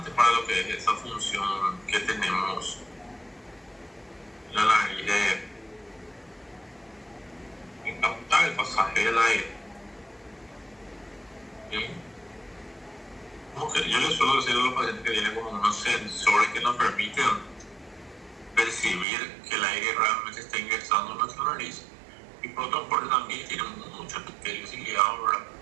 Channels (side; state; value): left; drops out; at 19.1 s